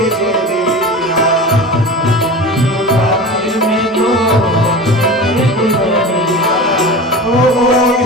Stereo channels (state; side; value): normal; both; correlation 0.31